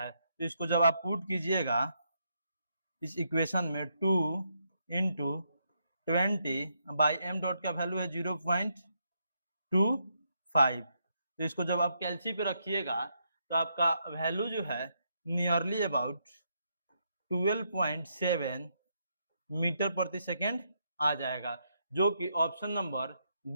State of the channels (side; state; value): both; inverted; correlation -0.78